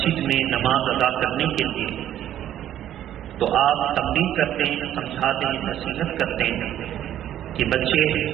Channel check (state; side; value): quieter; left; 11.5 dB